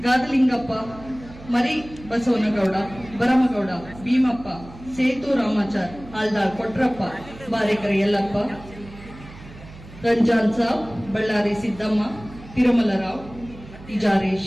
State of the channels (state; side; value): noise; right; hum, 18 dB below the sound